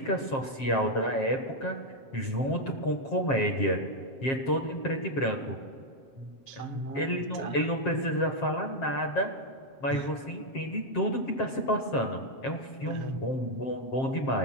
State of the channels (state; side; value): late; right; 7.5 ms